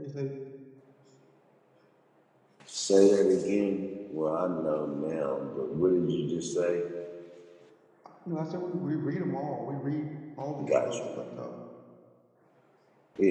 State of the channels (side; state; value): both; identical; correlation 1.00